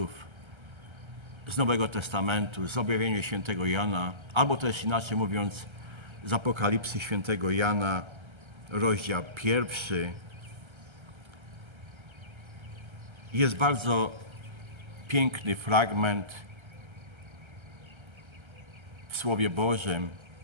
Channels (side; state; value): left; late; 1.3 ms